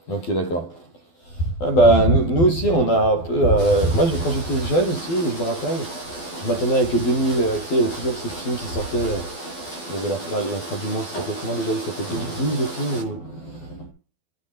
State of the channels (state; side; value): late; right; 12 ms